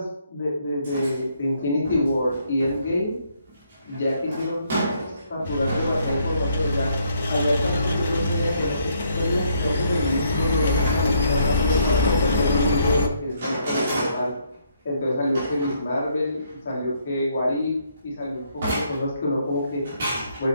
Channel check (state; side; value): inverted; both; correlation -0.71